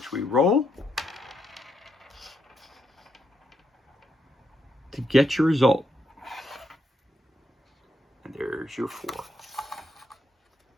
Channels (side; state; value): both; normal; correlation 0.79